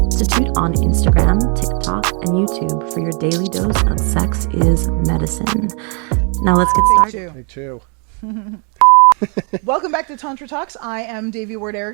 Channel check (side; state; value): left; quieter; 37.6 dB